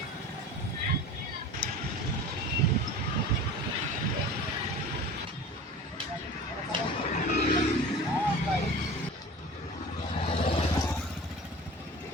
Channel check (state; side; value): normal; both; correlation 0.38